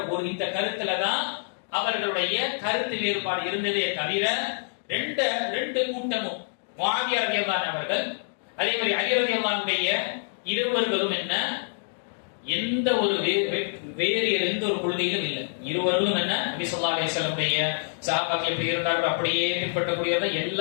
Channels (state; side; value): silent; right; digital silence